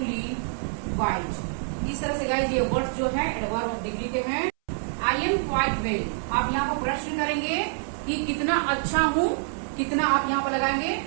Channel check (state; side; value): silent; left; 61 dB below the other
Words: white. इस तरह से गाइस ये वर्ड्स जो है एडवर्ब ऑफ डिग्री के हैं। आई एम क्वाइट वेल, आप यहाँ पर प्रश्न करेंगे कि कितना अच्छा हूँ, कितना आप यहाँ पर लगाएंगे